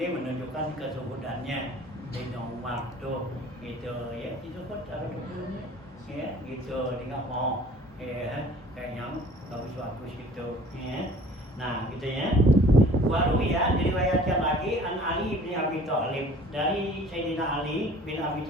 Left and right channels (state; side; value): normal; both; correlation 0.49